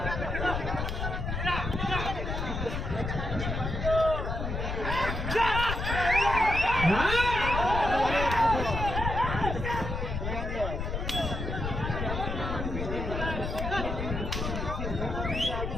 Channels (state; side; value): noise; left; rumble, 3 dB below the sound